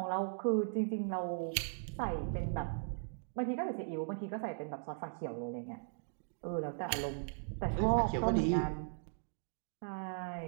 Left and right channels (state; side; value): silent; left; digital silence